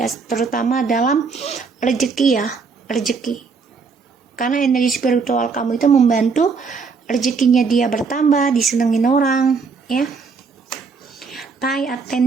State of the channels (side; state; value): left; quieter; 5.0 dB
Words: terutama dalam rezeki ya, rezeki. Karena energi spiritual kamu itu membantu rezekinya dia bertambah, disenengin orang ya. Pay